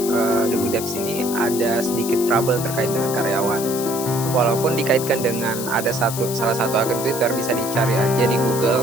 The Good Debs ini ada sedikit trouble terkait dengan karyawan. Walaupun dikaitkan dengan ada salah satu akun Twitter, bisa dicari aja di Google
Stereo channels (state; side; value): noise; left; hiss, 7 dB below the sound